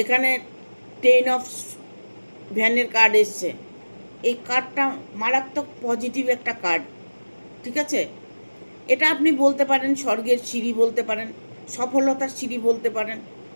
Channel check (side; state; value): both; inverted; correlation -1.00